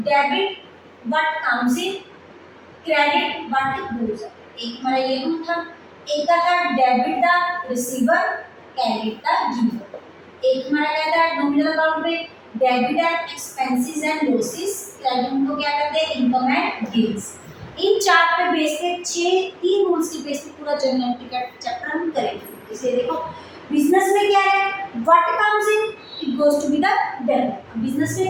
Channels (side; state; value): both; identical; correlation 1.00